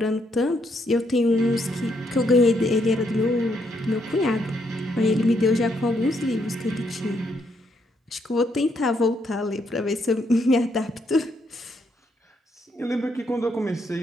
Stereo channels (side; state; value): both; normal; correlation 0.75